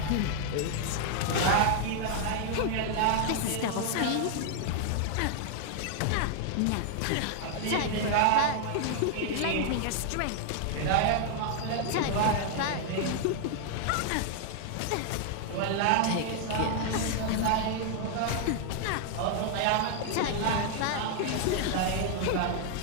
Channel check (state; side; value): different; both; correlation 0.00